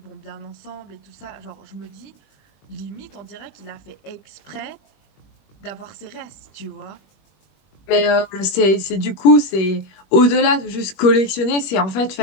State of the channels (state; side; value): late; right; 21 ms